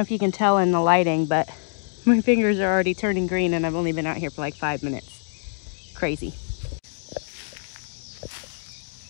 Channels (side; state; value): right; silent; digital silence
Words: you can tell in the lighting, but my fingers are already turning green and I've only been out here for like 5 minutes. Crazy.